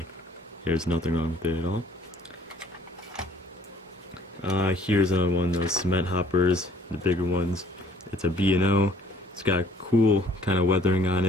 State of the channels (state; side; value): normal; both; correlation 0.58